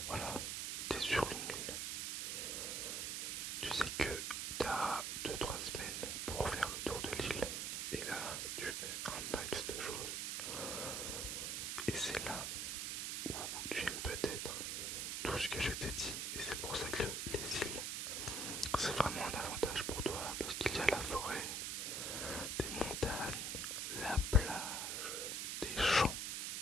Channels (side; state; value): right; noise; hiss, 1 dB below the sound